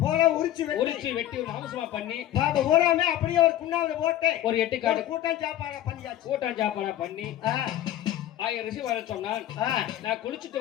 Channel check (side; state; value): right; quieter; 12.7 dB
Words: உரிச்சு வெட்டி ஒரு மாம்சமா பண்ணி ஊராமே அப்படியே ஒரு குண்டாவில போட்டு ஒரு எட்டு காடு கூட்டம் சாப்பாடா பண்ணி 1000 ரிசி வர சொன்னான். நான் குளிச்சுட்டு